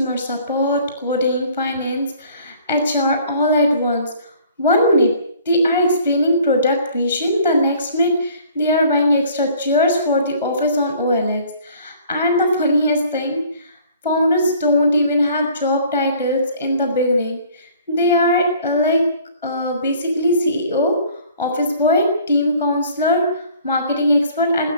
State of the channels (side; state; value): both; inverted; correlation -0.54